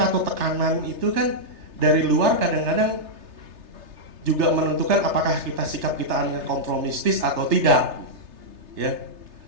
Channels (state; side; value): late; left; 3.3 ms